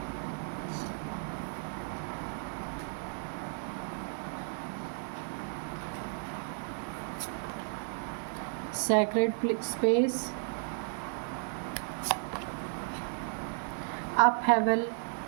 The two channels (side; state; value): left; silent; 55 dB below the other